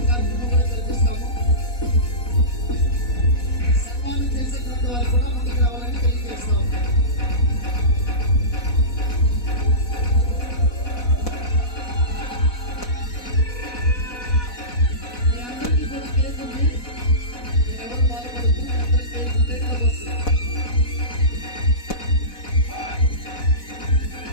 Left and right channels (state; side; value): late; right; 4.1 ms